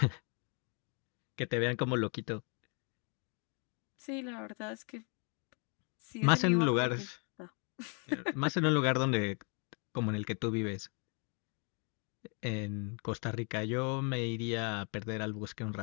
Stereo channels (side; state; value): right; quieter; 37.4 dB